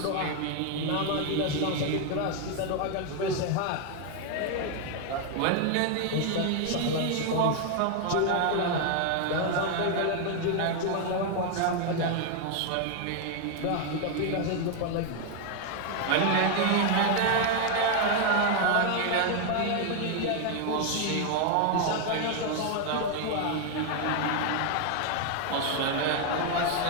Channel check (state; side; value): different; both; correlation 0.01